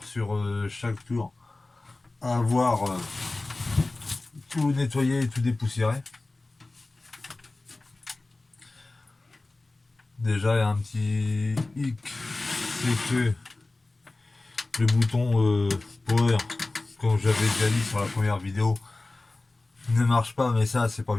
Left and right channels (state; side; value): quieter; right; 3.1 dB